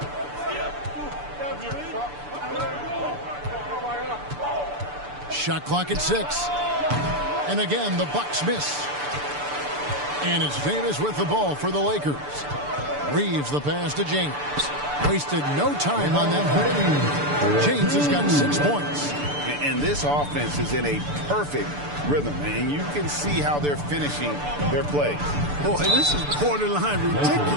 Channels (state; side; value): late; left; 6.9 ms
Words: Shot clock at 6. And again, the Bucks miss. And it's Davis with the ball for the Lakers. Reeves the pass to James. Wasted no time on that play. James has got 6 points. And this offense is in a perfect rhythm, and you can see how they're finishing their plays. Boy, this is borderline